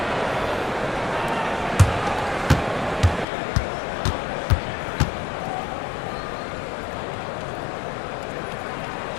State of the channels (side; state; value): right; drops out; at 3.2 s